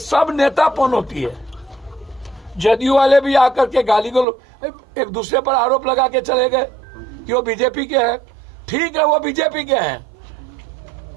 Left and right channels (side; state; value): left; drops out; at 4.2 s